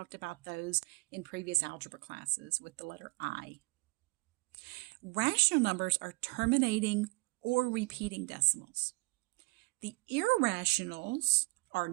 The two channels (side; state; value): left; quieter; 26.0 dB